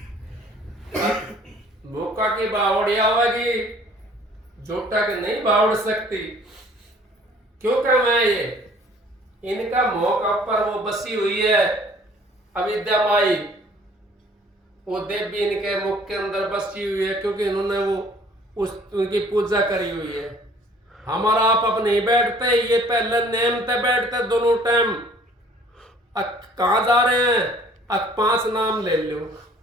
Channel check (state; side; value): normal; both; correlation 0.55